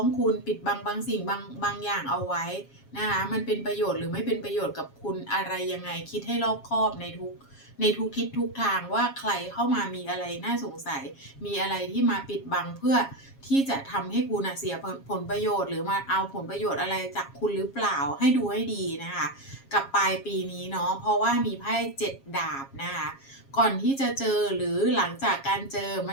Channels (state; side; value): late; right; 7.3 ms